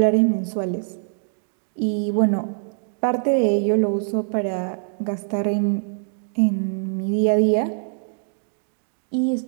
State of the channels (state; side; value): silent; left; digital silence